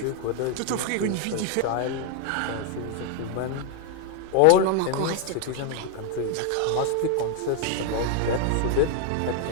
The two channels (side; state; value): both; different; correlation 0.01